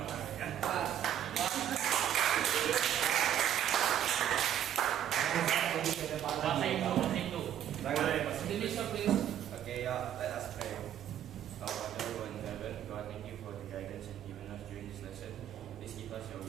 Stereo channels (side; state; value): left; quieter; 10.4 dB